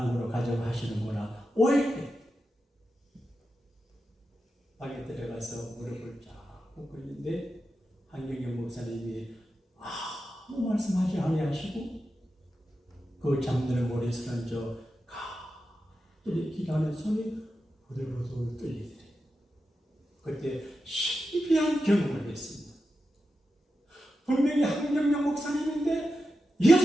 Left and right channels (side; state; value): both; normal; correlation 0.90